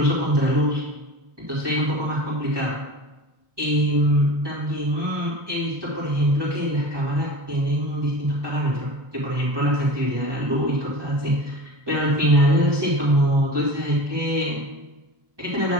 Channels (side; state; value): left; late; 1.2 ms